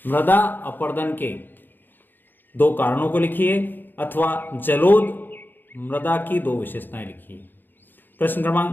मृदा अपरदन के 2 कारणों को लिखिए, अथवा जलोद मृदा की 2 विशेषताएं लिखिए। प्रश्न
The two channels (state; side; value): late; right; 0.092 ms